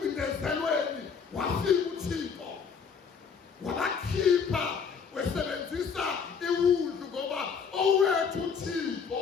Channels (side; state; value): right; quieter; 6.1 dB